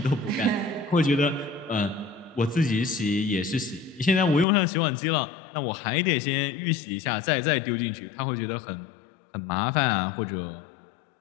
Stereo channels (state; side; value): drops out; right; at 4.5 s